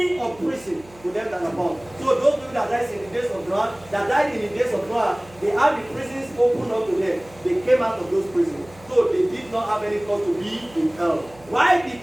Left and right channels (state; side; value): noise; right; hum, 24 dB below the sound